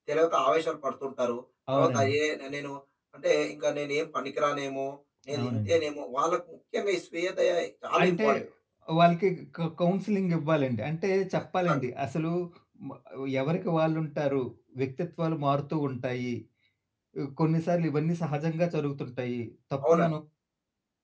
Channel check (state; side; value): identical; both; correlation 1.00